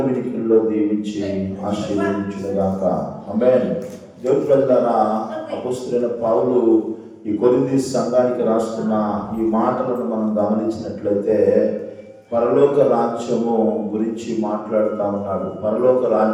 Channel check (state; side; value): identical; both; correlation 1.00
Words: వినికిల్లో దీవించి ఆశీర్వదించుగాక. ఆమేన్. దేవుని ప్రజలారా, అపొస్తలుడైన పౌలు ఈ కొరింథీ సంఘానికి రాస్తున్న ఈ మాటలను మనం గమనించినట్లయితే పరలోక రాజ్యము గురించి మాట్లాడుతూ ఉన్నాడు. పరలోక